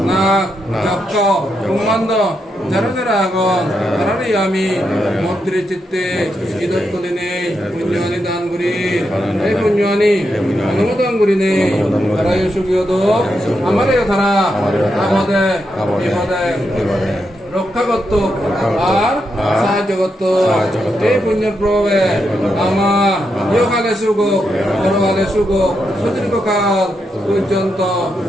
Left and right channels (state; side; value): normal; both; correlation 0.83